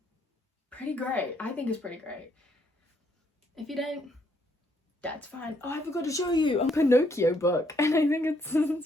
pretty great. I think it's pretty great. If you don't, that's fine. Oh, I forgot to show you a Pinocchio book, and I think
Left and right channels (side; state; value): both; normal; correlation 0.71